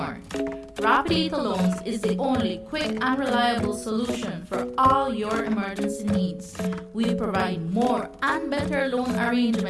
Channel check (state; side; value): identical; both; correlation 1.00